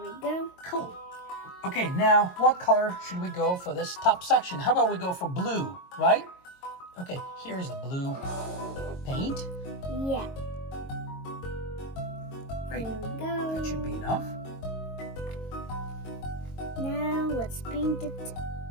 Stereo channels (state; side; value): late; right; 22 ms